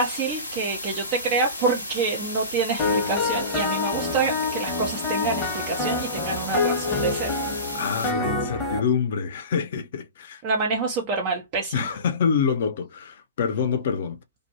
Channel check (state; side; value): inverted; both; correlation -0.32